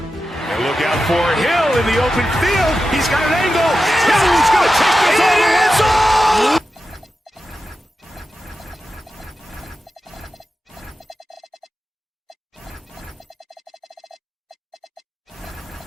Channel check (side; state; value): both; normal; correlation 0.91